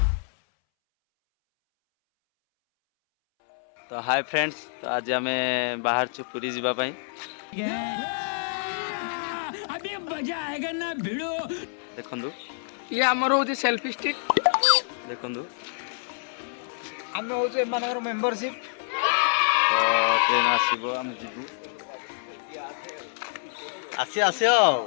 तो हाय फ्रेंड्स तो आज आम बाहर छु पुरी जीवा पाई अभी मजा आएगा ना भिड़ो देखंदु ये आमर हो सेल्फी स्टिक देखंदु आम हो मेंबरशिप तो ट्रेन आसीबो हम जीवु आसी आसियो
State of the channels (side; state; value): right; silent; 60 dB below the other